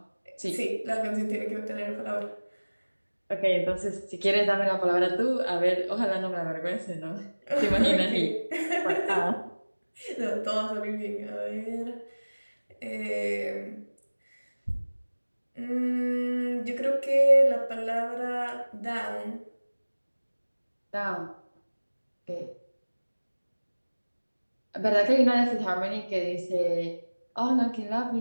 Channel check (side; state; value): both; inverted; correlation -1.00